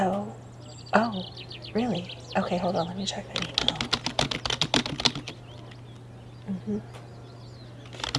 oh, really? Okay, hold on. Let me check that email.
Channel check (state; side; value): identical; both; correlation 1.00